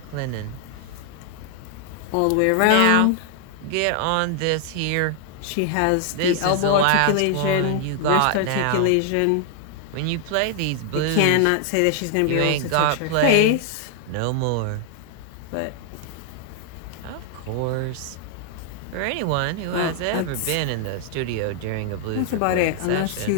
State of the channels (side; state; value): both; different; correlation 0.00